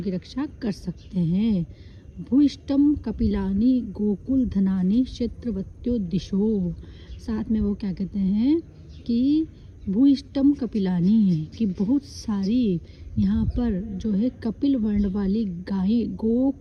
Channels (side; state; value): both; identical; correlation 1.00